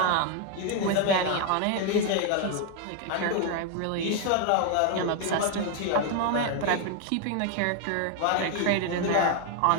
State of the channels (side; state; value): both; different; correlation 0.01